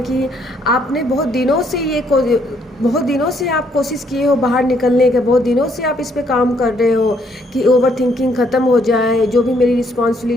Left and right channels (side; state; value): both; normal; correlation 0.69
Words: आपने बहुत दिनों से आप कोशिश किए हो बाहर निकलने के। बहुत दिनों से आप इस पे काम कर रहे हो कि ओवर थिंकिंग ख़त्म हो जाए, जो भी मेरी